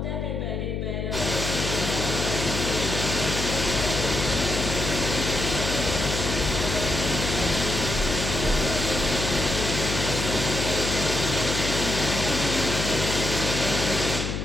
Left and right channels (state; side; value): noise; left; hum, 3 dB below the sound